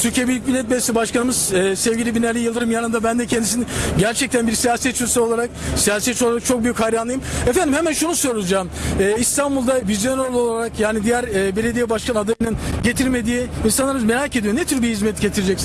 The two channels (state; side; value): identical; both; correlation 1.00